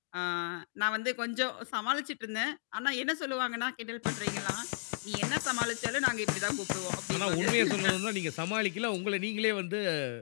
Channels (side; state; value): right; silent; digital silence